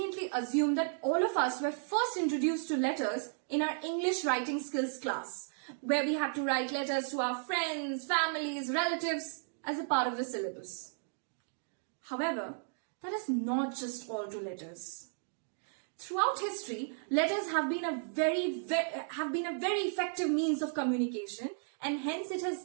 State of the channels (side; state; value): left; silent; digital silence